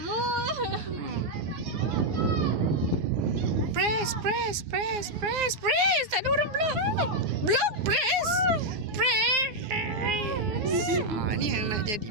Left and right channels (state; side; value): late; left; 9.6 ms